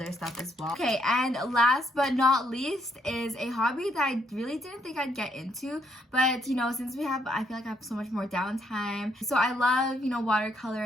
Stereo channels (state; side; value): normal; both; correlation 0.73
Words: stuff as well. Okay, and last but not least is a hobby that I really didn't think I'd get into, but you know, since I feel like I have so much more downtime. So I love, you know,